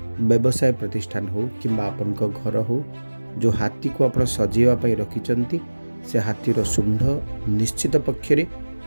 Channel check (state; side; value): inverted; both; correlation -1.00